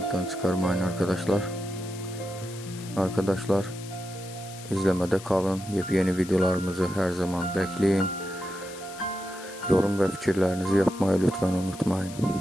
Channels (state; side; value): noise; left; hiss, 16 dB below the sound